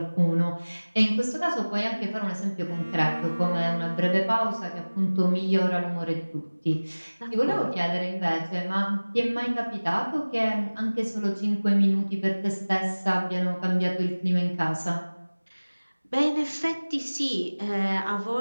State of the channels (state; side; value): inverted; both; correlation -1.00